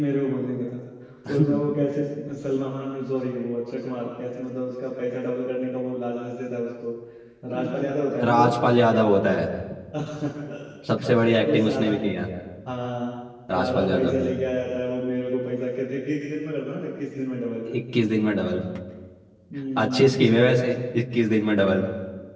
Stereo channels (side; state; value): both; identical; correlation 1.00